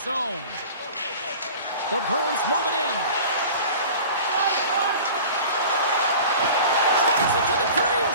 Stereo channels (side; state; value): both; inverted; correlation -0.40